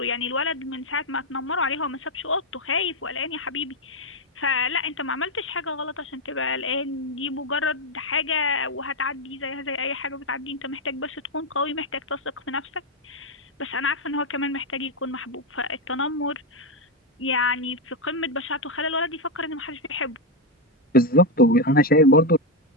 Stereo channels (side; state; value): both; normal; correlation 0.05